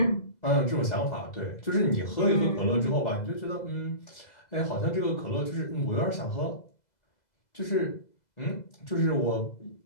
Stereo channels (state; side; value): late; right; 2.0 ms